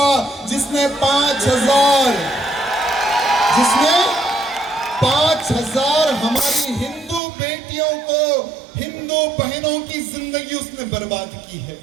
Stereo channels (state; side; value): drops out; left; at 7.2 s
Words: जिसने 5,000 हमारी हिंदू बेटियों को, हिंदू बहनों की जिंदगी उसने बर्बाद की है।